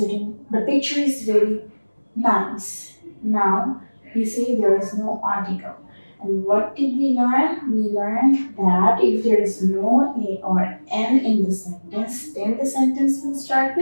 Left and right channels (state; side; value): inverted; both; correlation -1.00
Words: the picture is very nice. Now, you see there is no article. And what did we learn? We learned that if there is no a or n in the sentence, then the sentence will start